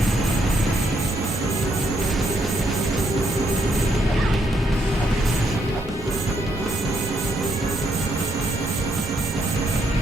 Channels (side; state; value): both; normal; correlation 0.75